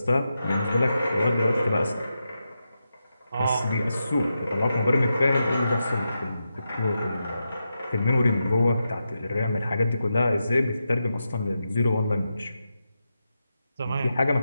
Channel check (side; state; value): both; inverted; correlation -0.88